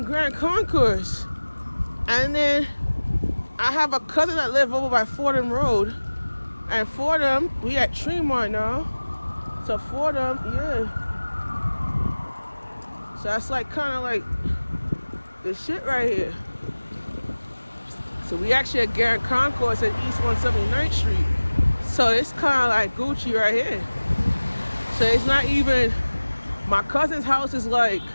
Grand Concourse. And then I have a cousin that live over by Fordham Road. And Fordham, we at Tremont now. So Fordham, yeah. So that's like kind of like this shit right here. So we actually at Grand Concourse at East 179th Street. So it's kind of like Gucci right here. So it's not even, my cousin's house is like,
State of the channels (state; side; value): inverted; both; correlation -1.00